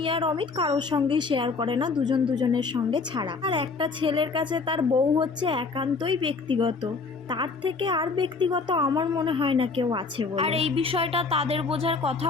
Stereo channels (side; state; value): right; quieter; 4.4 dB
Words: আর অমিত কারোর সঙ্গেই শেয়ার করে না, দুজন দুজনের সঙ্গে ছাড়া। আর একটা ছেলের কাছে তার বউ হচ্ছে একান্তই ব্যক্তিগত, তার থেকে আর ব্যক্তিগত আমার মনে হয় না কেউ আছে বলে। আর এই বিষয়টা তাদের বোঝার